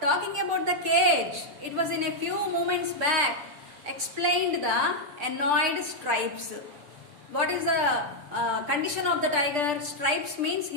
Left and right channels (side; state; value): left; late; 6.8 ms